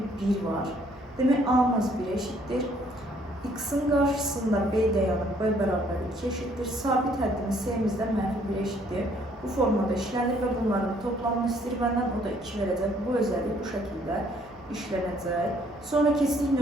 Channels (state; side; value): noise; right; hum, 27 dB below the sound